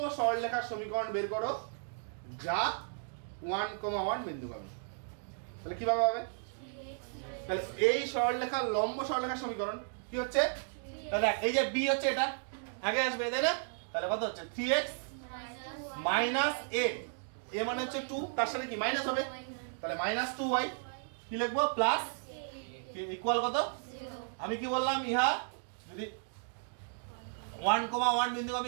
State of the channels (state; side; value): silent; left; digital silence